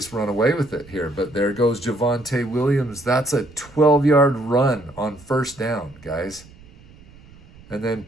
run away with it here, but there goes Javonte Williams. That's a 12-yard run on 1st down, guys. And then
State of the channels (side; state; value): right; noise; rumble, 23 dB below the sound